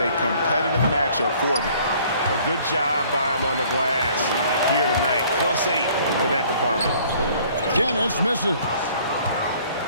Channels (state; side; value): inverted; both; correlation -0.57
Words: competitive matchup for them. A good job by them on the glass here tonight. +8 in that department. Dennis misses.